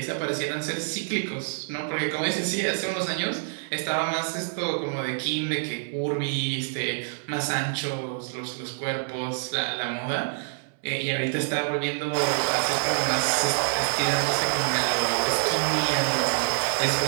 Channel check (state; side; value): silent; left; digital silence